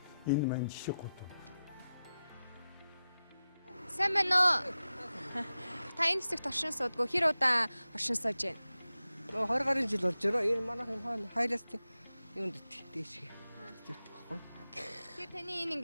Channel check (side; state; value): both; inverted; correlation -0.93